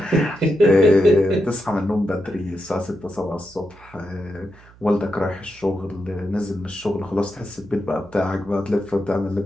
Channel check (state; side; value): noise; right; hum, 24 dB below the sound